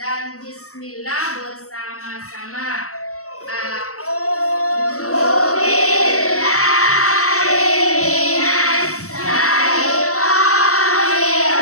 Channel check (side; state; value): right; late; 0.64 ms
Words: bismillah bersama-sama. A'udzu